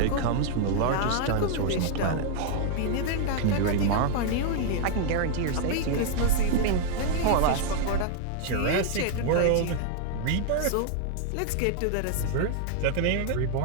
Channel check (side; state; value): both; different; correlation 0.00